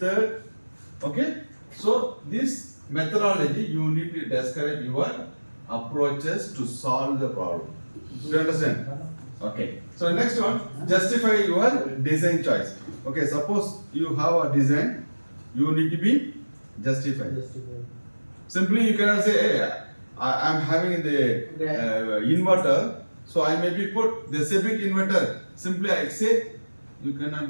Okay. So this methodology you need to describe your approaches to solve the problem. Do you understand? Okay. So next one, justify your design choice. Okay, suppose you have a design, you need to be justified. Simply you cannot say, hey, I am having the inverter, so I maybe put the Sebic inverter. Simply I say, you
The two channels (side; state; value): both; inverted; correlation -1.00